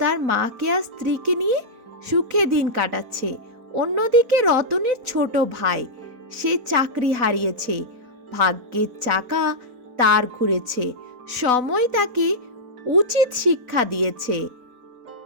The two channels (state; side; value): late; left; 4.0 ms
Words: মাকে আর স্ত্রীকে নিয়ে সুখে দিন কাটাচ্ছে। অন্যদিকে রতনের ছোট ভাই, সে চাকরি হারিয়েছে। ভাগ্যের চাকা তার ঘুরেছে, সময় তাকে উচিত শিক্ষা দিয়েছে।